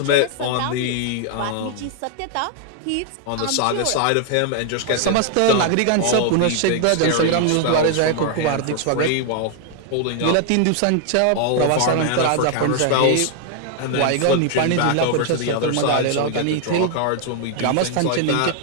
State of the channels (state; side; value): different; both; correlation 0.00